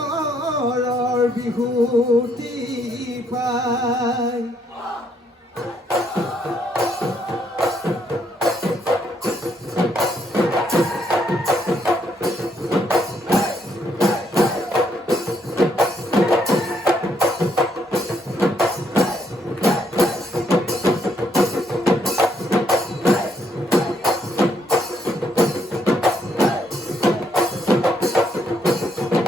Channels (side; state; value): both; normal; correlation 0.72